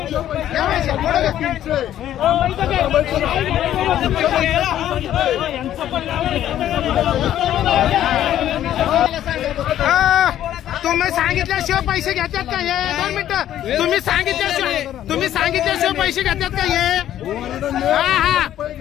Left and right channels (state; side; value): quieter; right; 11.8 dB